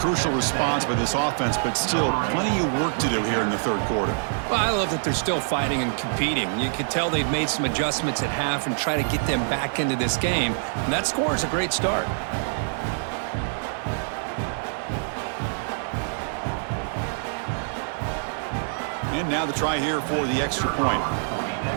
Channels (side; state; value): left; silent; digital silence